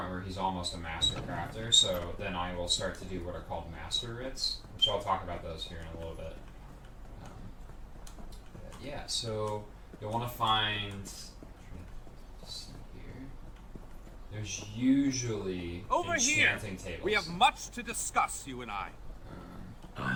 where he's almost a master crafter. So then I will start to do what are called master writs, which I'll talk about those here in a little bit. Yeah, so you'll want to find. Let's see here. There's usually Over here, enchanting tables. we have much to discuss, you and I.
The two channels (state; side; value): identical; both; correlation 1.00